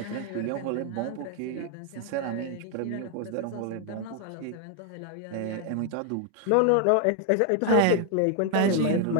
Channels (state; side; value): different; both; correlation 0.00